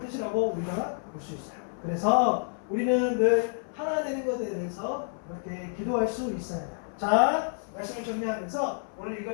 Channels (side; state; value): right; silent; 57 dB below the other